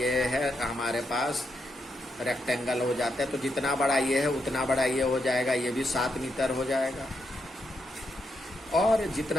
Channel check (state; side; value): normal; both; correlation 0.82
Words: है हमारे पास रेक्टेंगल हो जाता है। तो जितना बड़ा ये है उतना बड़ा ये हो जाएगा, ये भी 7 मीटर हो जाएगा, और